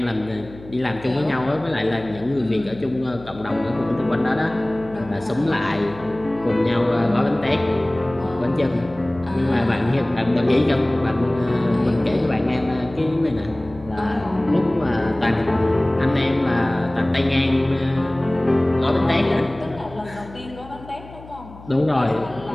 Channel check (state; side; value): noise; left; hum, 18 dB below the sound